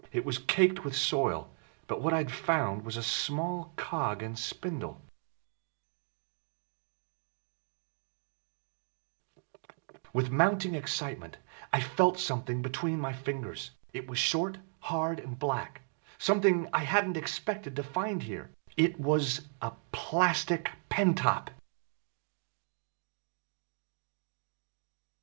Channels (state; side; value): silent; left; 54 dB below the other